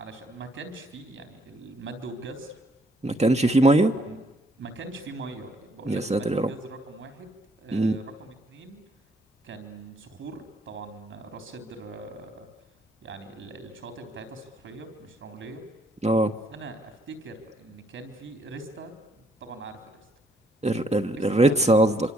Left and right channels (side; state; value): both; normal; correlation 0.68